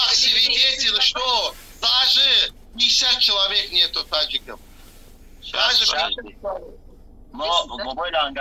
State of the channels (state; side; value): identical; both; correlation 1.00